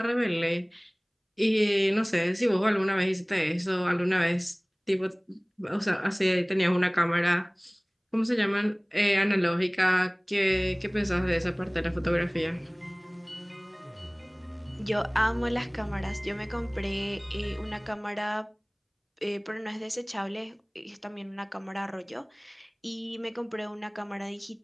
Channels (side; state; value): both; identical; correlation 1.00